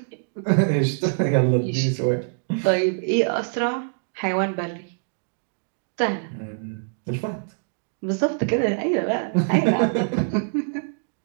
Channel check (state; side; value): silent; left; digital silence